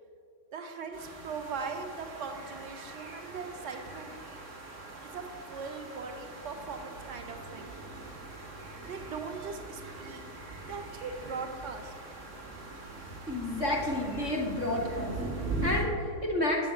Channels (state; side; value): late; left; 3.6 ms